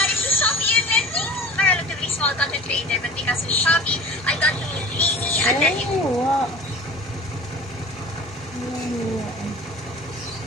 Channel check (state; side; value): normal; both; correlation 0.41